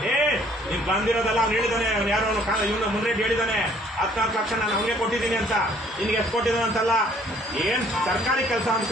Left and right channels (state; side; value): normal; both; correlation 0.60